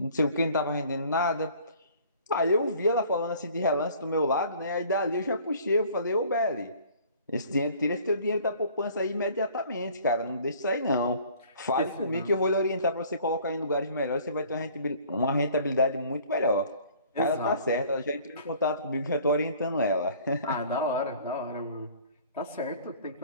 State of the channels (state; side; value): inverted; both; correlation -0.53